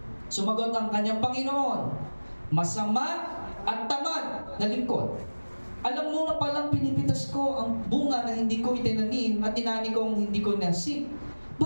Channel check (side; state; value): both; inverted; correlation -1.00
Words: Sumagot ang kanyang Panginoon, masama at tamad na lingkod. Alam mo na palang pinipitas ko ang bunga na hindi ko itinanim at tinani kong hindi ko nasip.